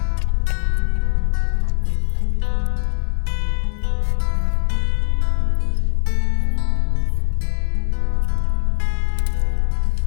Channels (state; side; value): silent; right; digital silence